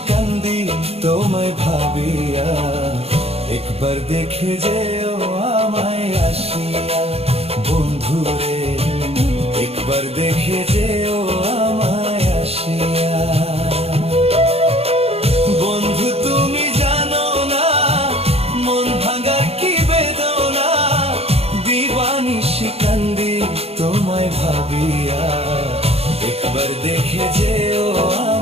কান্দি তোমায় ভাবিয়া, একবার দেখে যেও আমায় আসিয়া। বন্ধুরে একবার দেখে যেও আমায় আসিয়া। বন্ধু তুমি জানো না মন ভাঙার কি বেদনা, দিবানিশি কান্দি তোমায় ভাবিয়া, একবার দেখে যেও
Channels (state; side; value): late; left; 0.29 ms